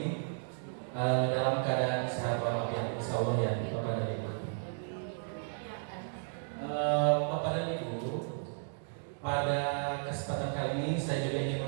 dalam keadaan sehat walafiat insyaallah ya Bapak dan Ibu. Bapak dan Ibu, pada kesempatan kali ini saya juga ingin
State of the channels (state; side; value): silent; left; digital silence